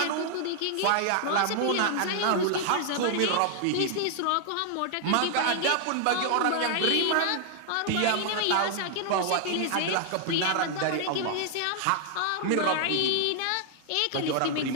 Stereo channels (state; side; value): different; both; correlation 0.00